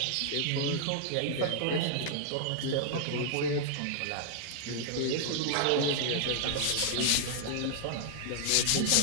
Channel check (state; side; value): different; both; correlation -0.01